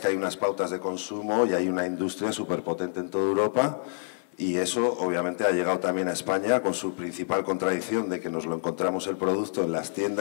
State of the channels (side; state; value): right; silent; 60 dB below the other